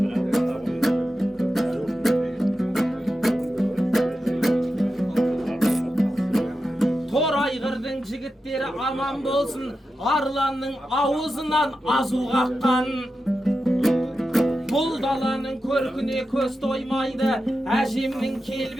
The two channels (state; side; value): normal; both; correlation 0.90